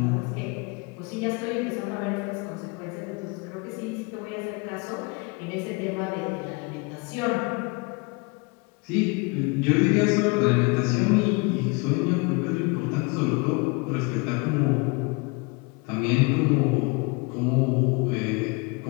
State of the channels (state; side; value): quieter; right; 28.7 dB